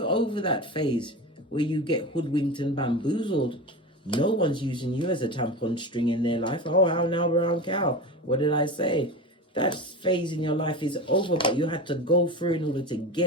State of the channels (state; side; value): normal; both; correlation 0.26